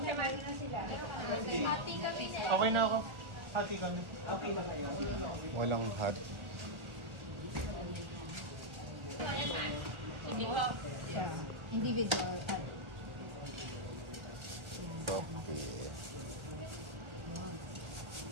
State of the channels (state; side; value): late; left; 1.4 ms